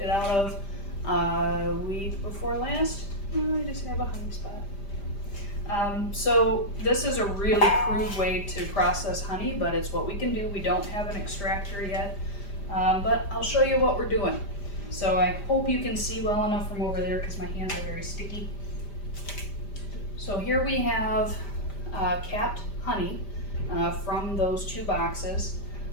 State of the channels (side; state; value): right; late; 5.0 ms